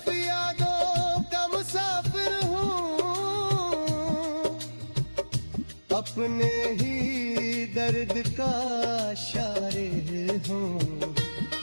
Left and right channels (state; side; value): inverted; both; correlation -1.00